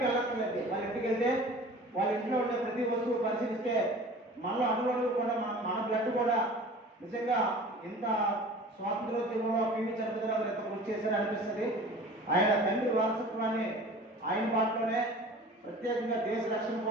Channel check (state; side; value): normal; both; correlation 0.42